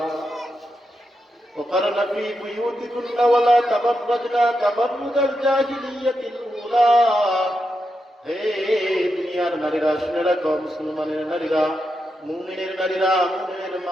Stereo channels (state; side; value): normal; both; correlation 0.86